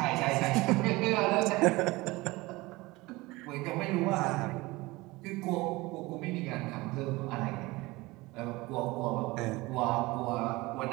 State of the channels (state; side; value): quieter; left; 21.5 dB